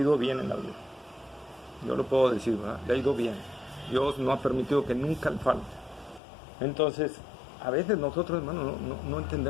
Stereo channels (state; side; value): drops out; right; at 6.2 s